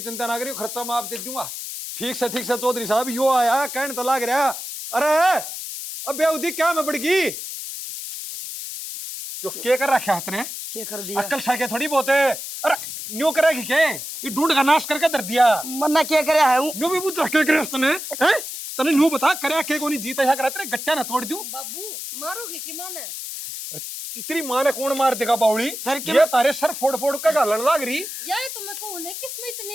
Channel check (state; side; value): noise; left; hiss, 8 dB below the sound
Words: चिंता ना करियो, खर्चा मैं आप दे दूंगा। ठीक से चौधरी साहब, यो आया कहने तो लाग रहा। अरे अब बेउदी क्या मैं बढ़गी, जो के कर रखा हाथ ने, क्या कर दिया अक्ल साके थोड़ी बहुत है। अरे न्यू करेगी के, ये ढूंढ का नाश करके धर दिया। मन्ना क्या करे है हूँ न्यू भी बुझ के करे तने हैं, तने न्यू बता करे के कोनी जीता है करे तेरे गट्टा ना तोड़ दूं। बाबू मारोगे कि माने? तेरी मां ने कौन मार देगा बावली, ये तारे सर फोड़ फोड़ के गालन लाग रही। यार तो मैं कहूं ना किसमें